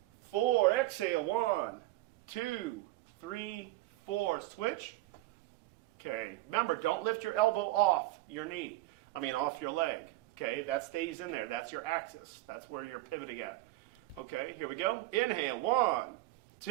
4. Exhale. 1, 2, 3, 4. Switch. Okay. Remember, don't lift your elbow off your knee. Off your leg. Okay. That stays in there. That's your axis. That's where you're pivoting at. Okay. Here we go. Inhale. 1,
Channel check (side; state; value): left; quieter; 17.8 dB